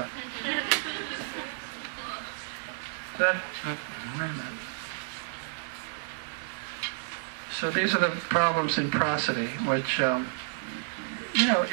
wait a minute. So these are the problems in prosody, which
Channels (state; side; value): silent; left; digital silence